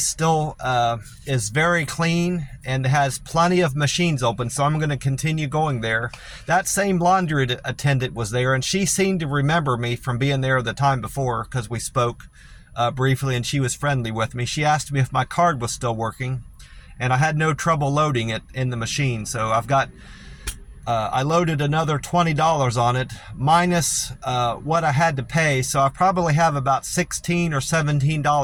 still is very clean and has plenty of machines open, so I'm going to continue going there. That same laundry attendant was there, and she seemed to remember me from being there the time before because we spoke briefly, and she was friendly with me. She asked me if my card was still working, and I had no trouble loading it in the machine. So I've got I loaded another $20 on it, minus what I had to pay. So I probably have about $16 or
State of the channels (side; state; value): both; identical; correlation 1.00